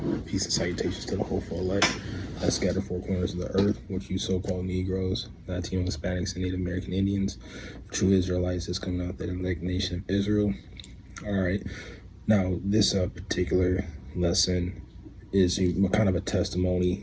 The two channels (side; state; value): both; identical; correlation 1.00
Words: Peace and salutations to the hopeful elect that scattered four corners of the earth, which you so-called Negroes, Latino, Hispanics, and Native American Indians, true Israelites that's coming out that elect nation of Israel. All right, now this particular lesson is kind of a testimony,